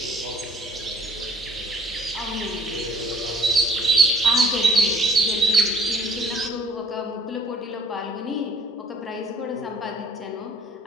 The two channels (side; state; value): both; normal; correlation 0.56